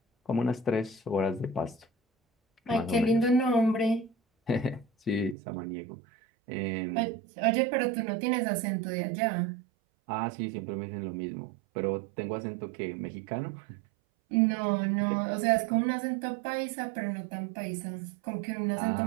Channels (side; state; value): left; drops out; at 5.4 s